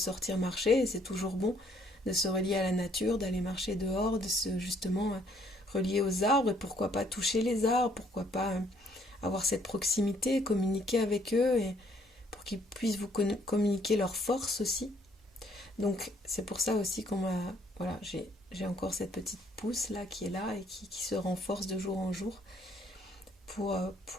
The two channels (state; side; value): normal; both; correlation 0.65